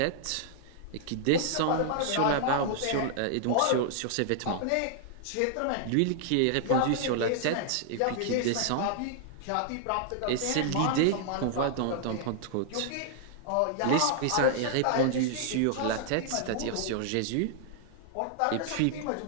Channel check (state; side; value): different; both; correlation -0.01